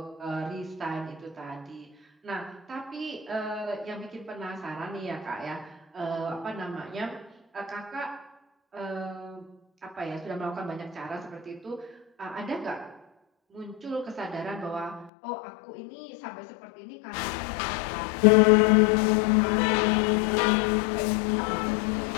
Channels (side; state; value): right; drops out; at 15.1 s